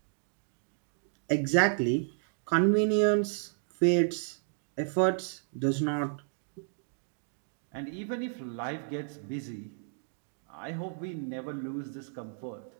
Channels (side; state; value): left; silent; digital silence